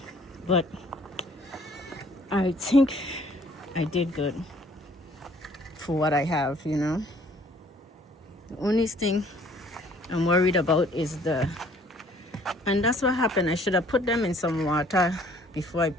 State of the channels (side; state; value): both; normal; correlation 0.58